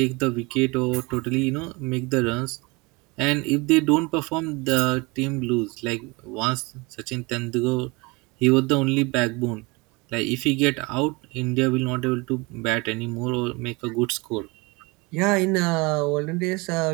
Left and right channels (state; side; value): quieter; left; 26.1 dB